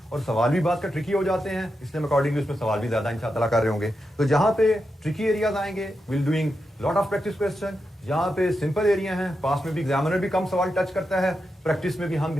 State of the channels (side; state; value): both; normal; correlation 0.87